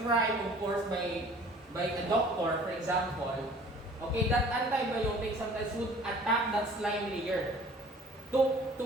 of course, by a doctor, for example, okay, that antibiotic sometimes would attack that slime layer to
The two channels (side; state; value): both; normal; correlation 0.50